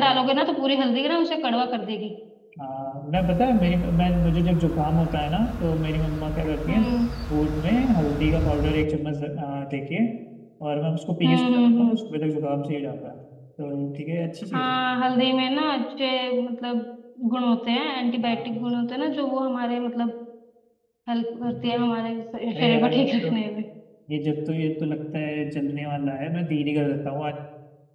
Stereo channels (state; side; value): identical; both; correlation 1.00